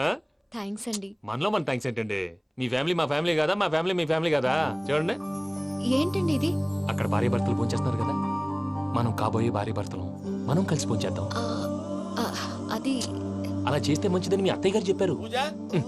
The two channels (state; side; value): identical; both; correlation 1.00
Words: థ్యాంక్స్ అండి. మనలో మన థ్యాంక్స్ ఏంటండి? మీ ఫ్యామిలీ మా ఫ్యామిలీ కదా, మా ఫ్యామిలీ మీ ఫ్యామిలీ కదా. చూడండి, ఏంటండి ఇది? అక్కడ భార్య భర్తలు పోంచేస్తున్నారు కదా, మనం కాబోయే భార్య భర్తలు మనం కలిసి పోంచేద్దాం. ఆ, ఆ, అది అలా చేస్తే మంచిదని మీ అత్తయ్య గారు చెప్పారు. పూజ